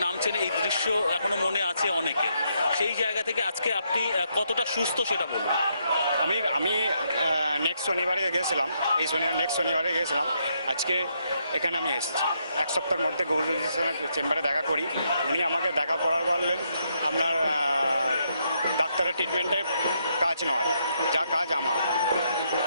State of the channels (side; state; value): both; inverted; correlation -0.77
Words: নামছেন, এই দৃশ্য এখনো মনে আছে অনেকের। সেই জায়গা থেকে আজকে আপনি কতটা সুস্থ সেটা বলুন। আমি নেক্সট শনিবারে গেছিলাম, নেক্সট শনিবারে গেছিলাম, আজকে এখানে আমি এসেছি। এক সপ্তাহের মধ্যে গৌরীর চেম্বারে দেখা করি, উনি আমাকে দেখা করার বললেন আপনার ডাক্তারের ট্রিটমেন্টে কাজ নয়, যা কাজ আমার।